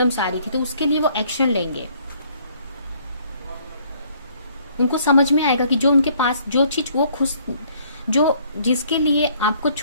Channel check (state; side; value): inverted; both; correlation -0.62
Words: आ रही थी तो उसके लिए वो एक्शन लेंगे। उनको समझ में आएगा कि जो उनके पास जो चीज वो खुश जो जिसके लिए आपको